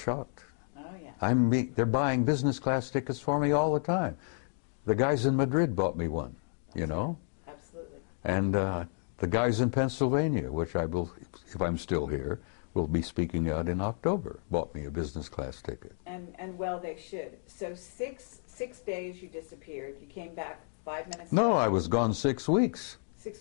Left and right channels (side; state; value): right; silent; digital silence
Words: Oh, yeah. They're buying business class tickets for me all the time. The guys in Madrid bought me one, you know? Right. Absolutely. And the guys in Pennsylvania, which I will, if I'm still here, will be speaking out in October, bought me a business class ticket. And well, they should. So six days you disappeared. You came back 5 minutes No, later. I was gone 6 weeks.